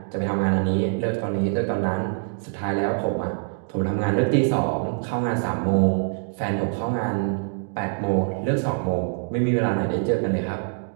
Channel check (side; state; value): left; silent; digital silence